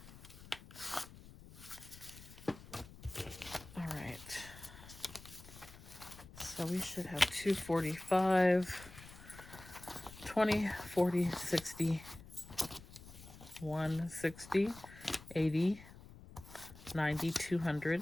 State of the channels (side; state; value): left; noise; rumble, 18 dB below the sound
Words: So we should have 245, 20, 40, 60, 160, 80, 90, 200,